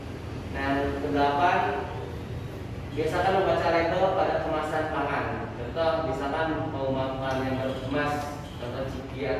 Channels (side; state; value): both; identical; correlation 1.00